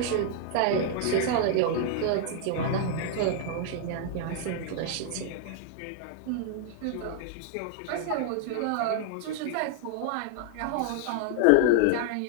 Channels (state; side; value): different; both; correlation 0.00